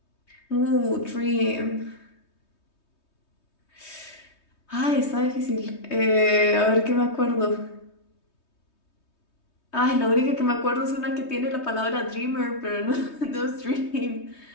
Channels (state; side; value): late; right; 3.2 ms